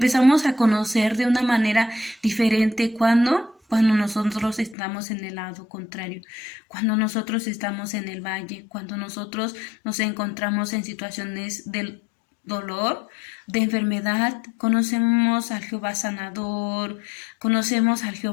a conocer de una manera diferente cuando nosotros estamos en el lado contrario, cuando nosotros estamos en el valle, cuando nosotros nos encontramos en situaciones del dolor, de enfermedad. Conocemos al Jehová sanador, conocemos al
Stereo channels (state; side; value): drops out; right; at 4.8 s